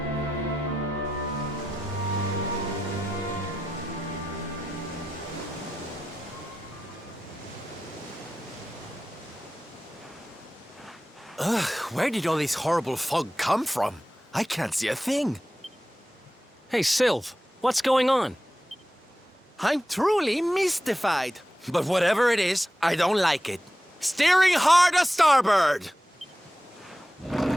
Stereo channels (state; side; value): normal; both; correlation 0.92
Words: Ugh, where did all this horrible fog come from? I can't see a thing. Hey, Sylv, what's going on? I'm truly mystified. But whatever it is, I don't like it. Steering hard a starboard!